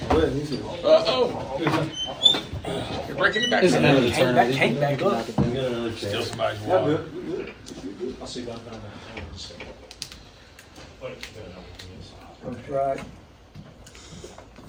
You're breaking it back. This is another turn. Can't back up. Still somebody's Yeah, water. good. I'll see that. Coach Wright.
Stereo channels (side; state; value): both; identical; correlation 1.00